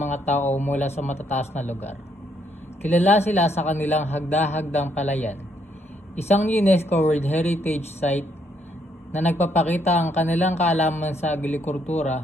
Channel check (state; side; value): normal; both; correlation 0.72